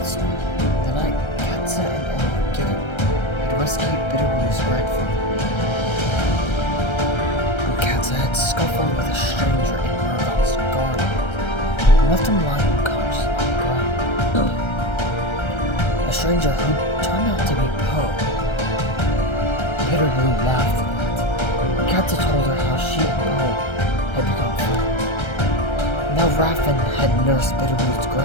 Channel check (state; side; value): late; right; 1.3 ms